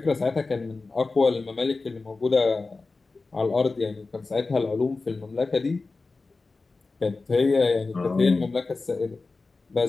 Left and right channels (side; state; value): right; quieter; 3.8 dB